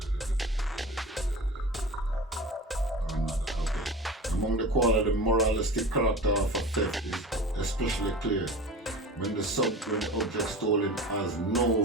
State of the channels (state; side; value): normal; both; correlation 0.34